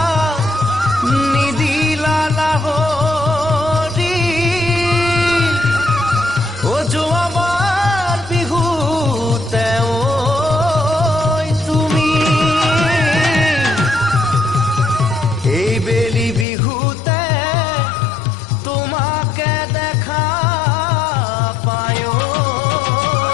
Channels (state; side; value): drops out; right; at 16.4 s